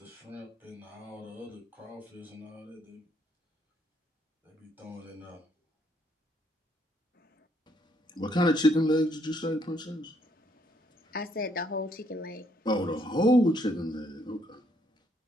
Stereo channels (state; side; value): normal; both; correlation 0.70